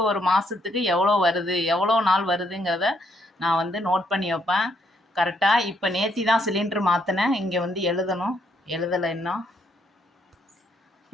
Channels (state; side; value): normal; both; correlation 0.73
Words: ஒரு மாதத்துக்கு எவ்வளோ வருது, எவ்வளோ நாள் வருதுங்கிறத நான் வந்து நோட் பண்ணி வைப்பேன் கரெக்டாக. இப்போ நேற்று தான் சிலிண்ட்ரு மாற்றினேன். இங்கே வந்து எழுதணும், எழுதலை இன்னும்.